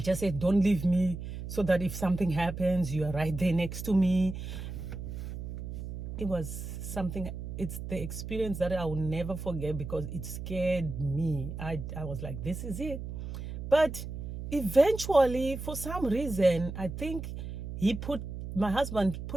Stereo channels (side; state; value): right; noise; hum, 7 dB below the sound